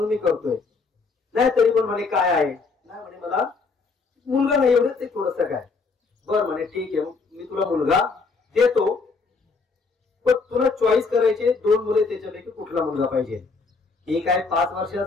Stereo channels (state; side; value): quieter; right; 4.3 dB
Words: मी करतोय. नाही तरी पण म्हणे काय आहे? नाही म्हणे, मला मुलगा नाही, एवढंच ते थोडस काय. बर म्हणे, ठीक आहे, मी तुला मुलगा देतो, पण तुला चॉईस करायचे 2 मुले, त्याच्यापैकी कुठला मुलगा पाहिजे? एक आहे 5